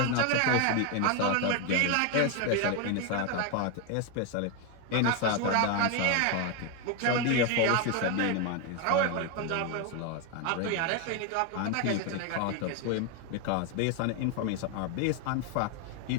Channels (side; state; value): both; different; correlation 0.01